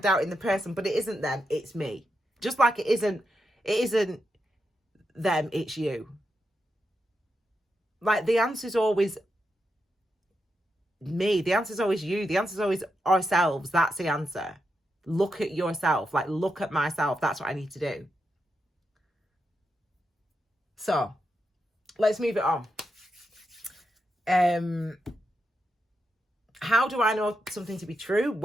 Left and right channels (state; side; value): normal; both; correlation 0.85